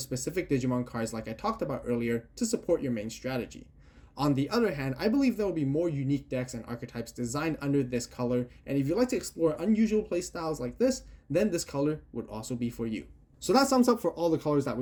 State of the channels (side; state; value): both; identical; correlation 1.00